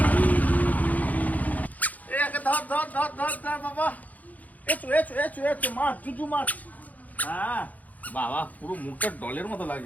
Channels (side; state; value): right; late; 0.078 ms